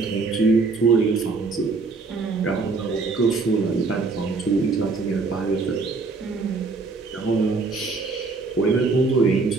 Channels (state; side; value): quieter; left; 4.0 dB